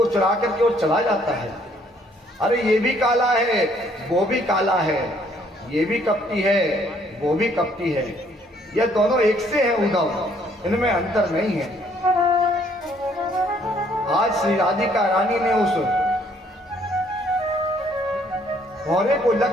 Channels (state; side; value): normal; both; correlation 0.65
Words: चुरा करके और चला जाता है। अरे ये भी काला है, वो भी काला है, ये भी कपटी है, वो भी कपटी है, ये दोनों एक से हैं उद्धव, इनमें अंतर नहीं है। आज श्री राधिका रानी ने उस भौरे को